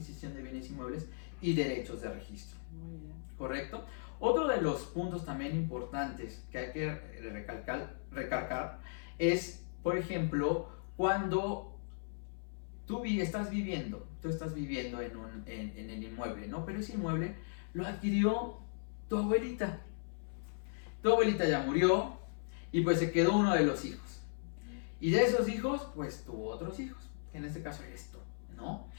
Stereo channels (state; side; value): silent; right; 53 dB below the other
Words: de bienes inmuebles y derechos de registro. Muy bien. ¿Correcto? Otro de los puntos también importantes que hay que recalcar es, por ejemplo, cuando tú estás viviendo en el inmueble, ¿no? Pero ese inmueble lo adquirió tu abuelita. Tu abuelita ya murió y pues se quedó uno de los hijos. Y de esos hijos, pues tuvo otros hijos, que en este caso eres tú, ¿no?